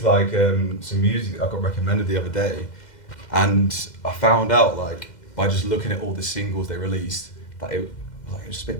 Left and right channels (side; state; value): right; late; 2.1 ms